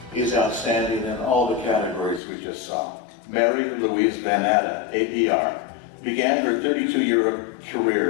is outstanding in all the categories we just saw. Mary Louise VanNatta, APR, began her 32-year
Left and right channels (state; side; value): drops out; right; at 2.2 s